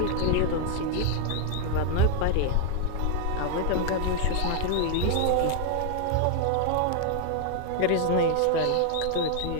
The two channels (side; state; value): both; different; correlation 0.01